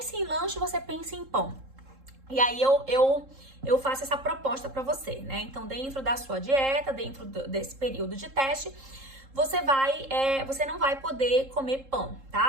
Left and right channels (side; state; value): left; late; 3.7 ms